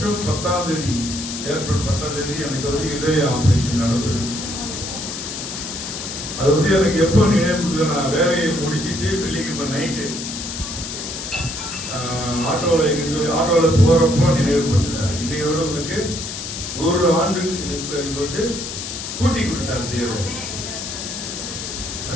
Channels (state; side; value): noise; left; hiss, 7 dB below the sound